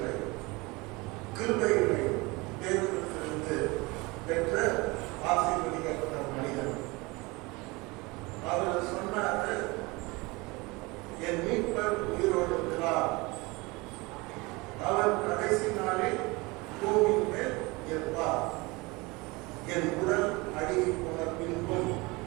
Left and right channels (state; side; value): quieter; left; 24.5 dB